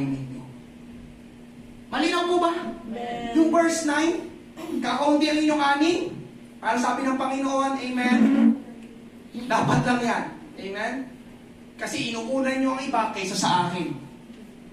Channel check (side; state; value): both; identical; correlation 1.00